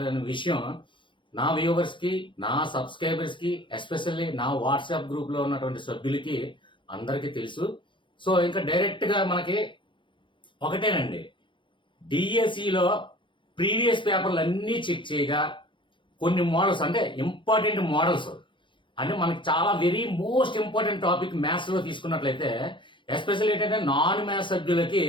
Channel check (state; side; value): late; right; 0.24 ms